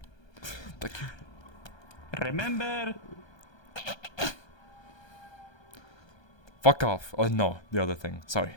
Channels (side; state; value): right; late; 1.2 ms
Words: Thank you. Remember? Fuck off. Oh no, the other thing. Sorry.